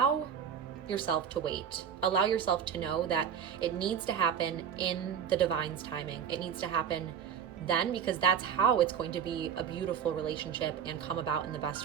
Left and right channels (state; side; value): quieter; left; 7.9 dB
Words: yourself to wait. Allow yourself to know that it needs to happen in the Divine's timing. It needs to happen then, because that's how it's going to be a beautiful relationship and come about in the